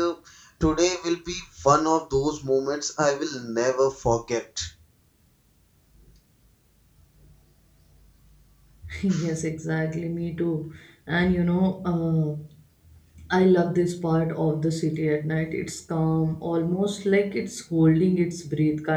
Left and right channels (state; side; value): identical; both; correlation 1.00